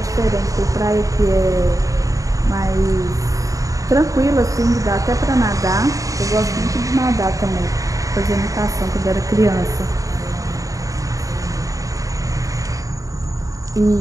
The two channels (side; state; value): left; late; 0.16 ms